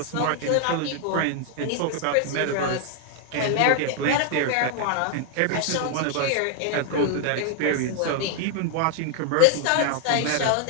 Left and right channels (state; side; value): different; both; correlation 0.00